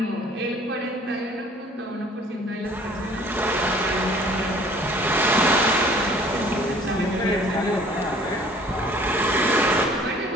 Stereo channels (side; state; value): both; normal; correlation 0.53